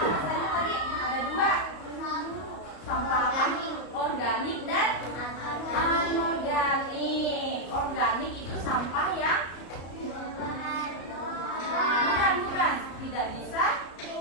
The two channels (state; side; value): late; right; 34 ms